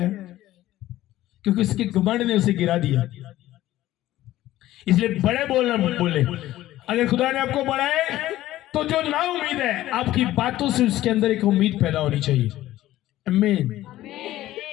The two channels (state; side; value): quieter; right; 14.9 dB